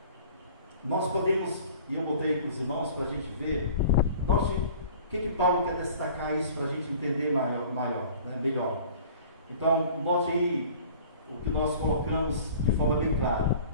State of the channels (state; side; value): inverted; both; correlation -0.47